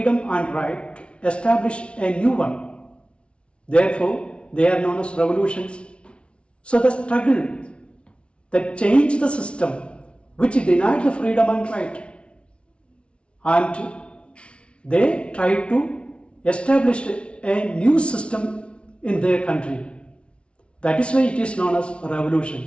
and right to establish a new one. Therefore, they are known as revolutions. So the struggle that changed the system which denied the freedom and right, and they tried to establish a new system in their country. That is why it is known as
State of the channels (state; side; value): late; right; 0.059 ms